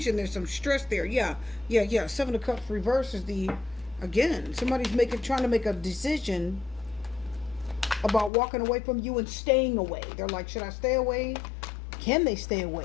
There's some stress there. Yeah. Seven of Cups reversed is the, again, somebody's trying to make a decision about walking away from you and staying away. They're like, should I stay away? Can they stay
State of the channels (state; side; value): drops out; right; at 8.3 s